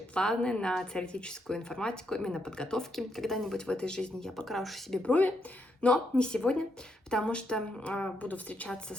планы на теоретическую информатику, именно подготовки. Когда-нибудь в этой жизни я покрашу себе брови, но не сегодня, потому что буду встречаться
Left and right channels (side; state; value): both; normal; correlation 0.78